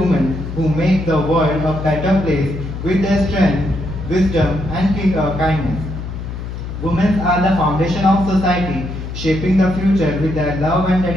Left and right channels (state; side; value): noise; left; hum, 7 dB below the sound